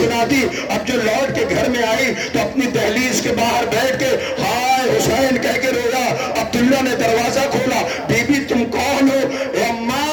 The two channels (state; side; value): identical; both; correlation 1.00